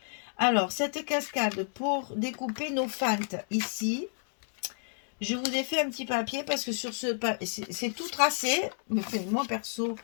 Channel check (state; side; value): silent; right; 55 dB below the other